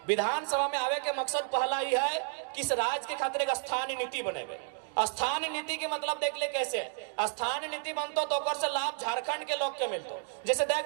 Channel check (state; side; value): silent; left; 57 dB below the other